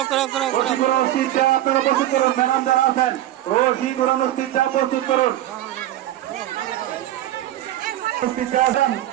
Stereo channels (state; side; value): quieter; left; 13.8 dB